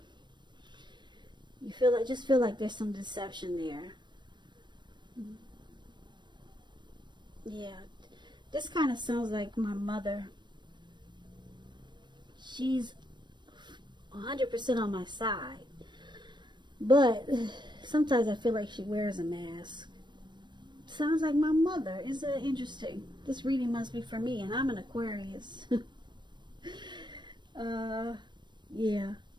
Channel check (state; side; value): late; left; 0.22 ms